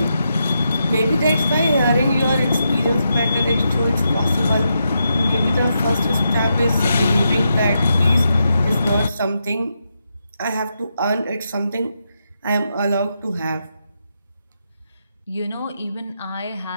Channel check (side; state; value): both; inverted; correlation -0.84